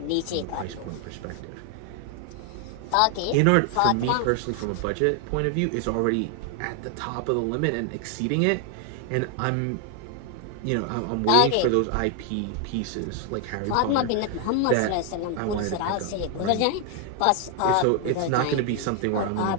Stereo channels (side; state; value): both; different; correlation 0.00